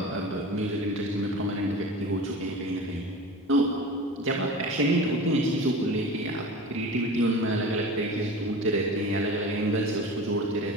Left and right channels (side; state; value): both; normal; correlation 0.34